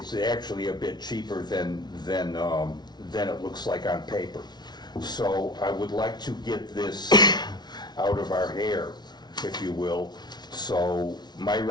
actually a bit cheaper than it looks like on paper. So I would like to get this out of our hair, if you will. So my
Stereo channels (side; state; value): right; late; 0.20 ms